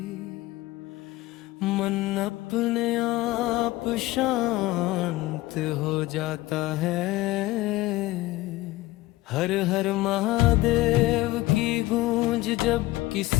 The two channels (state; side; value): quieter; right; 18.6 dB